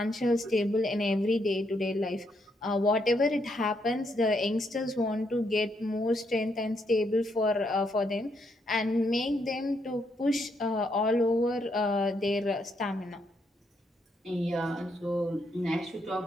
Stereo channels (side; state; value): both; normal; correlation 0.76